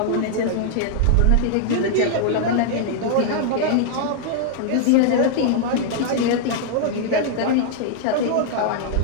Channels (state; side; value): different; both; correlation -0.01